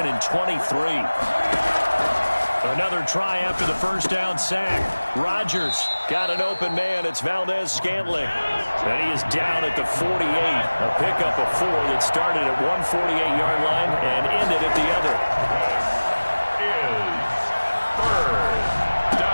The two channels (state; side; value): inverted; both; correlation -1.00